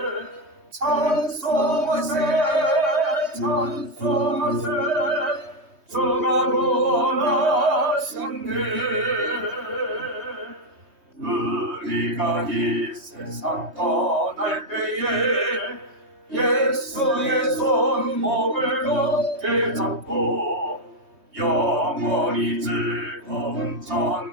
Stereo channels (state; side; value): late; left; 3.2 ms